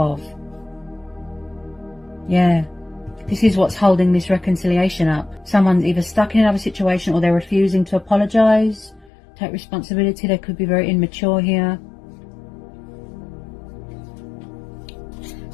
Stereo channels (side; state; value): right; drops out; at 9.1 s